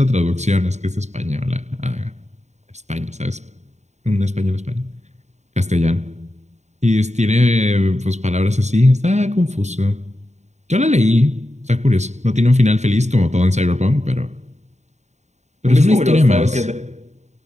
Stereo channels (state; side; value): late; left; 0.33 ms